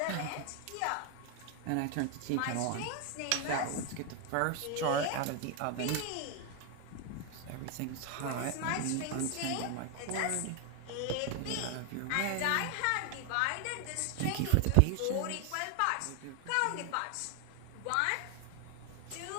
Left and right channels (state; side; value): different; both; correlation 0.01